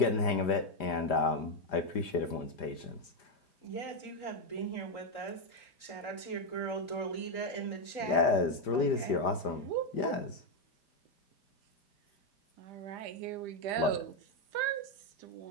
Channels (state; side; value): late; right; 5.0 ms